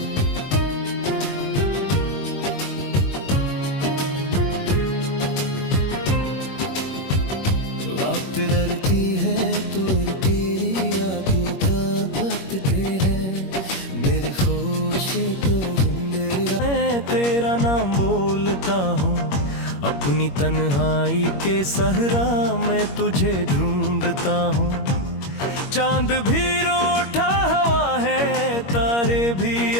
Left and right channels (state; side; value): late; right; 21 ms